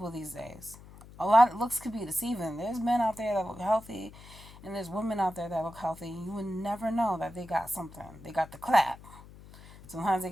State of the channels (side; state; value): left; noise; hum, 19 dB below the sound